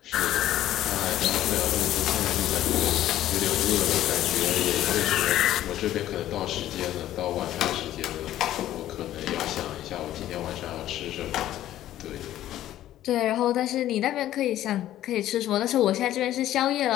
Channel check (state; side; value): quieter; right; 13.1 dB